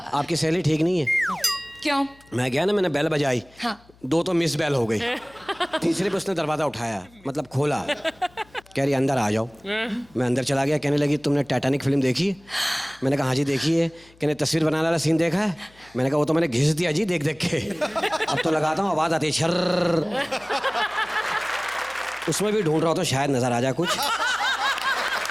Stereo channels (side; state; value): left; noise; hum, 28 dB below the sound